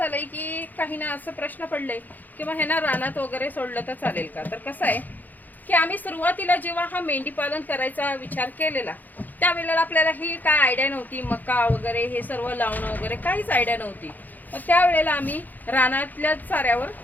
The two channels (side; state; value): right; late; 0.084 ms